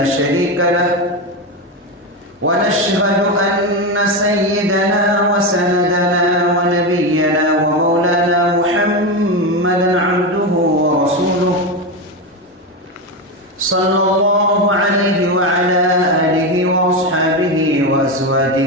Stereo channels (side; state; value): both; normal; correlation 0.15